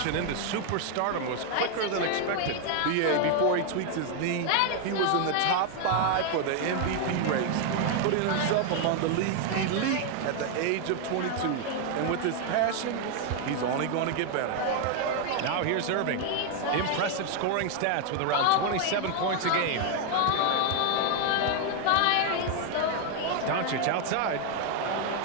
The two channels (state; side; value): different; both; correlation 0.00